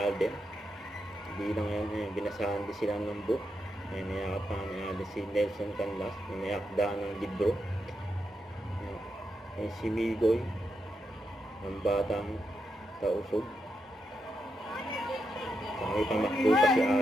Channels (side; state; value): both; normal; correlation 0.84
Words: Hindi lang yan, binasahan din sila ng book. May niyakapan ni Alden si Nelson Canlas, may akda ng libro. Si Migoy, ang batang tausog. May pamakbo pa si